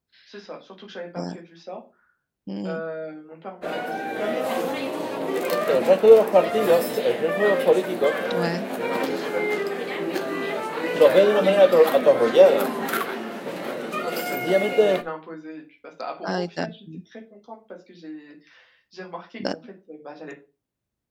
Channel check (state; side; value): identical; both; correlation 1.00